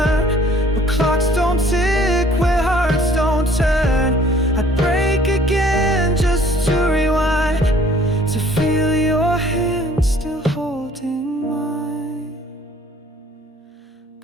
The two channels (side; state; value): both; normal; correlation 0.56